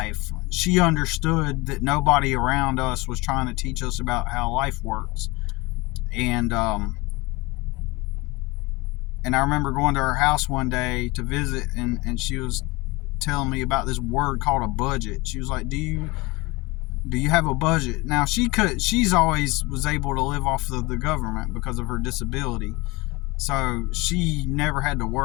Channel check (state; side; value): quieter; right; 23.6 dB